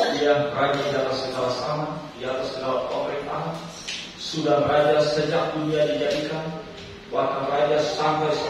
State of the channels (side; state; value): both; identical; correlation 1.00